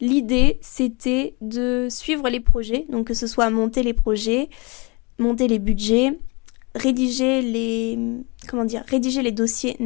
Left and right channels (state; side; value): quieter; right; 26.9 dB